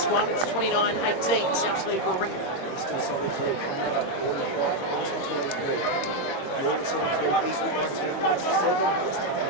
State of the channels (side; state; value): right; late; 22 ms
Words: one. It's 29-18. South Sydney Warringah. Still 17, Arsenal 23. Northern 73, Eastwood 19, West 7, West